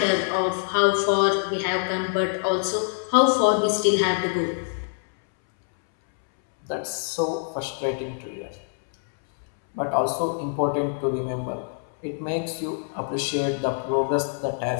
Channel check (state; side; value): silent; right; 62 dB below the other